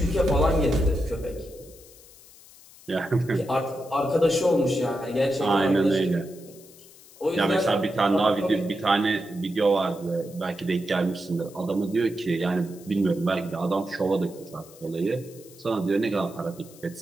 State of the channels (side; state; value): left; noise; hiss, 22 dB below the sound